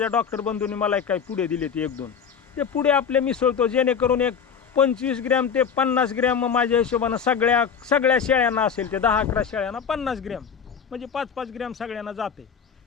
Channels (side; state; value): right; quieter; 7.0 dB